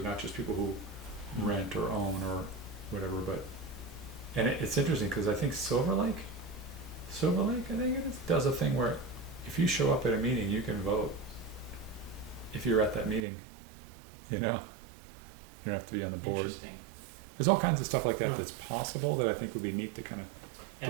not just people who rent or own or whatever, but, and it's interesting because I think Silver Lake, I think it is, does a thing where if you show up at a meeting, you can vote if you're at that meeting, you don't have to be on the board. Interesting. There's all kinds of stuff like that Huh. that's possible that I think would be neat to kind of And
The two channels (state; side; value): drops out; left; at 13.2 s